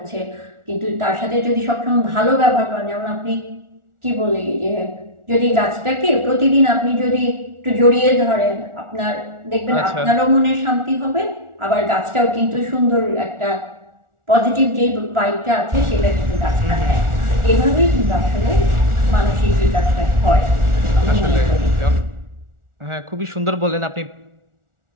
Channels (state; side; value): late; left; 1.4 ms